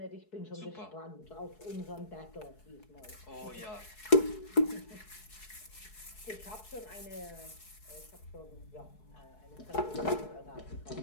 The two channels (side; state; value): right; late; 4.7 ms